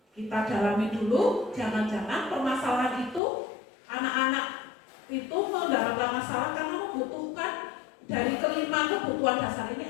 kita dalami dulu. Jangan-jangan permasalahan itu anak-anak itu mendapatkan masalah karena membutuhkan dari kelima kebutuhan dasar ini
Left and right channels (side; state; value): right; drops out; at 3.2 s